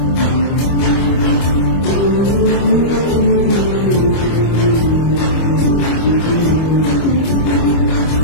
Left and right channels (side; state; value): right; late; 25 ms